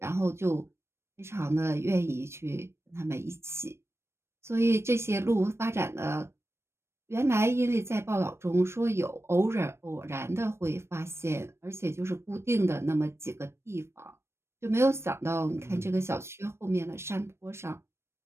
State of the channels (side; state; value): left; late; 0.13 ms